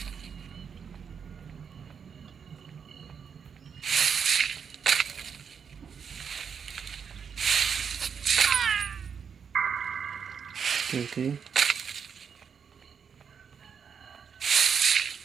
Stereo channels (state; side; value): quieter; left; 6.8 dB